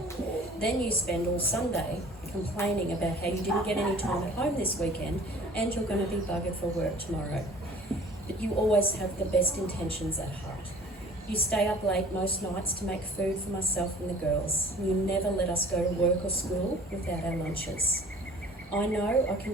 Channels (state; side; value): normal; both; correlation 0.48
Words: Then you spend all Sunday complaining about how you didn't get any time at home this weekend and you're going to be buggered for work tomorrow. But you always have the best intentions at heart. You stay up late most nights to make food for myself and the girls. You never let us go to work or school without our lunches. I know I can